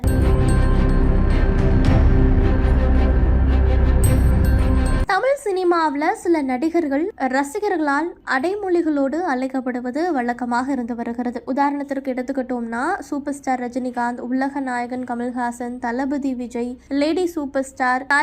தமிழ் சினிமாவில் சில நடிகர்கள் ரசிகர்களால் அடைமொழிகளோடு அழைக்கப்படுவது வழக்கமாக இருந்து வருகிறது. உதாரணத்திற்கு எடுத்துக்கிட்டோம்னா சூப்பர் ஸ்டார் ரஜினிகாந்த், உலக நாயகன் கமல்ஹாசன், தளபதி Vijay, lady super star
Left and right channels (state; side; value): identical; both; correlation 1.00